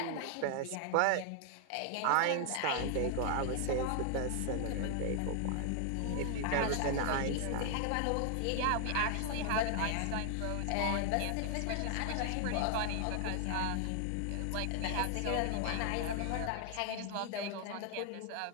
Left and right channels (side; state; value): both; different; correlation 0.00